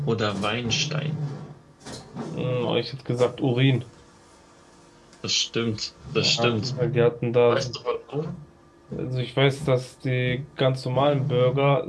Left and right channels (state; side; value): identical; both; correlation 1.00